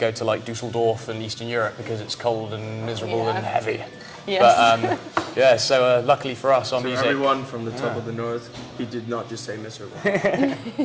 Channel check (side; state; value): both; identical; correlation 1.00